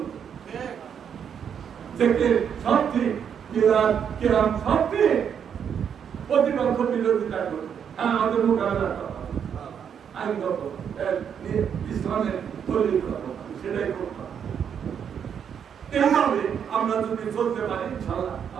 থেকে সব ঠিক, মিলাদ কেরাম সব ঠিক, প্রতিপক্ষ বিরোধিতা করবে। হ্যাঁ, আমাদের মোকাবেলা করা আইনগত ইসলামের তৈরি করা, সেটাই করতে হবে। এইভাবে আমরা যদি চলতে পারি, ইনশাআল্লাহ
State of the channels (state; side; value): quieter; left; 7.9 dB